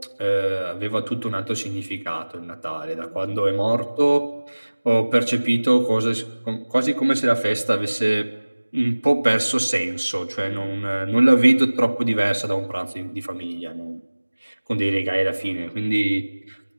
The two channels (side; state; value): both; inverted; correlation -1.00